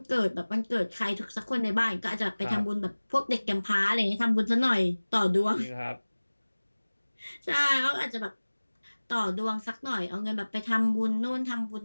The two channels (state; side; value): inverted; both; correlation -1.00